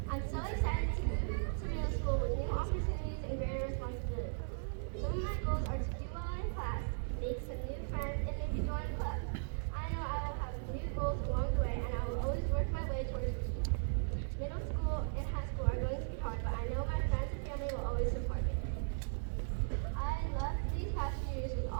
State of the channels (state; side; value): silent; left; digital silence